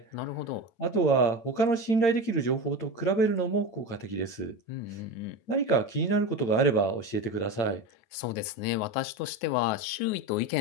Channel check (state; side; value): late; right; 9.1 ms